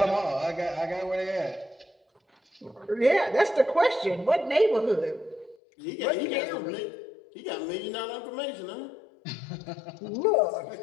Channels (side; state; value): right; drops out; at 5.6 s